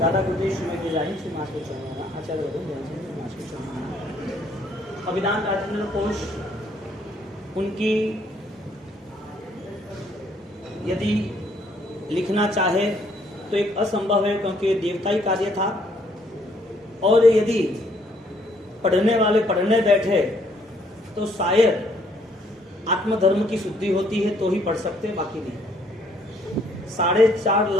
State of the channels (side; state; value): both; normal; correlation 0.66